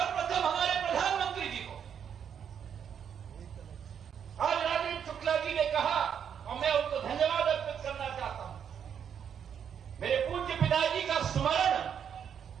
हमारे प्रधानमंत्री जी को। आज राजेंद्र शुक्ला जी ने कहा और मैं उनको धन्यवाद अर्पित करना चाहता हूं। मेरे पूज्य पिताजी का स्मरण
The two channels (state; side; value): quieter; left; 8.1 dB